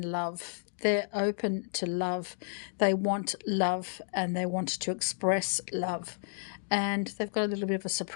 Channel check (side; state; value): right; silent; digital silence